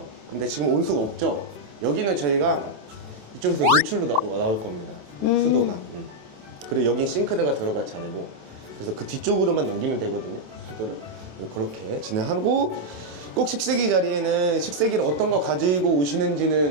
근데 지금 온수가 없죠? 여기는 저희가 이쪽에서 노출로 나올 겁니다. 수도가. 그리고 여긴 싱크대가 들어갈 자리고 그래서 그 뒤쪽으로만 넘기면 되거든요. 수도를. 그렇게 진행하고 꼭 식세기 자리에는 식세기를 어떤 거 가지고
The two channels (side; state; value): left; late; 27 ms